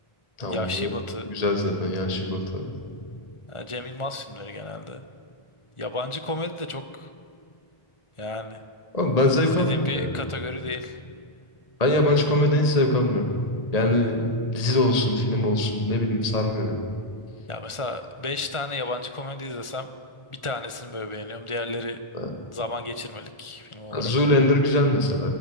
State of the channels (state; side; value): late; right; 1.4 ms